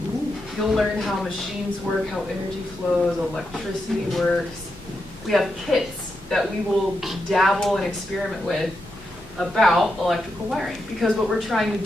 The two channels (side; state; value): both; normal; correlation 0.85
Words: You'll learn how machines work, how energy flows, electricity works. We have kits that we will dabble and experiment with about electrical wiring, because what we're trying to